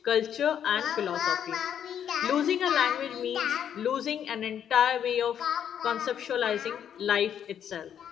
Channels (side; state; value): right; quieter; 9.1 dB